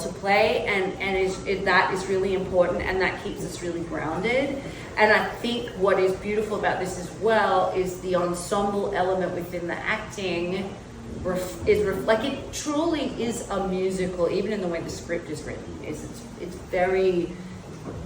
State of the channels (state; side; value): identical; both; correlation 1.00